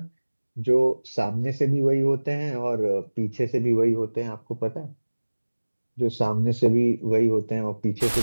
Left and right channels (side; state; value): both; inverted; correlation -1.00